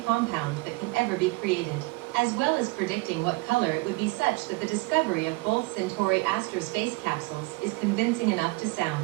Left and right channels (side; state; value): left; quieter; 24.4 dB